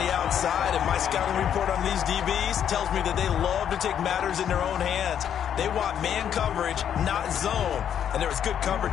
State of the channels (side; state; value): right; quieter; 9.1 dB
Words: outside, and my scouting report on these DBs tells me that they love to take matters in their own hands. They want man coverage, not zone. And there was good